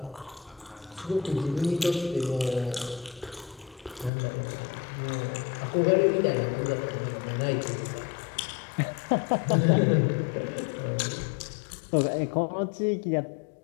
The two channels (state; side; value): drops out; right; at 4.1 s